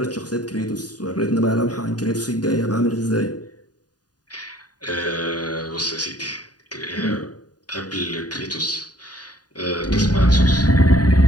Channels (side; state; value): right; late; 0.69 ms